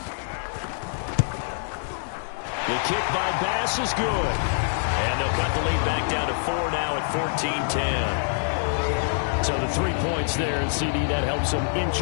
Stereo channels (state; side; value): silent; right; digital silence